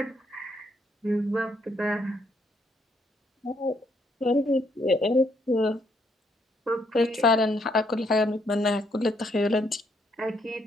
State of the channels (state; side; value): normal; both; correlation 0.72